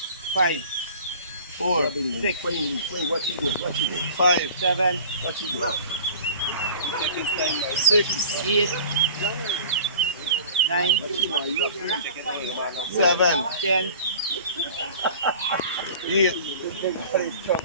5, 4, 6, what you do? 5, 7, what you do? 6, 8, 9, 7, 10, 8,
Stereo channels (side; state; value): both; inverted; correlation -0.43